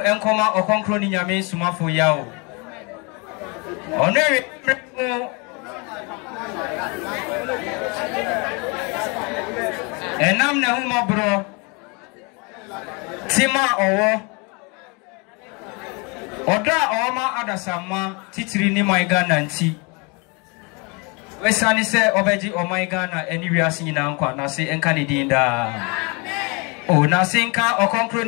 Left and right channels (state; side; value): quieter; right; 30.7 dB